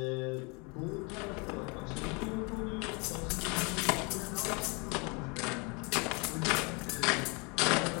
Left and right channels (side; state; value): right; quieter; 31.1 dB